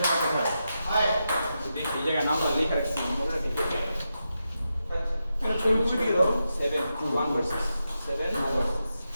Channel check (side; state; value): both; inverted; correlation -0.88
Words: সময় কোথায় দেখি এই জায়গায় নামটা লেখা রাখছি মোবাইলে দেখে এটা ছবি তুলে দিয়ে দাও 7 2 1 ভার্সেস 7 ভার্সেস